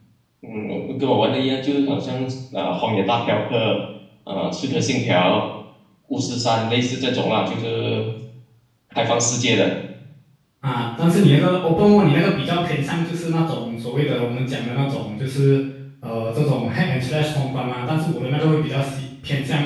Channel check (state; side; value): identical; both; correlation 1.00